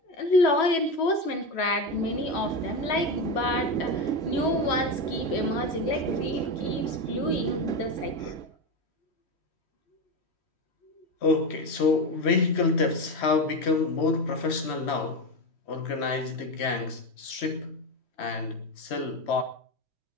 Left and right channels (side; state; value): right; late; 3.1 ms